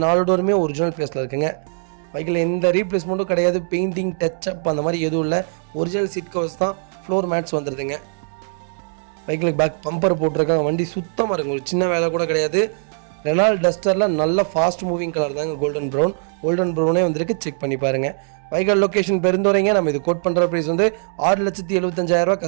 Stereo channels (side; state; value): left; silent; 65 dB below the other